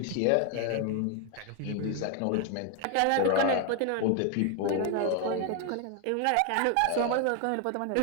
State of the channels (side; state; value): both; different; correlation 0.01